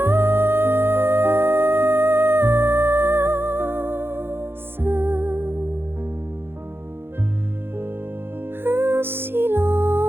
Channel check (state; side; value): late; left; 0.11 ms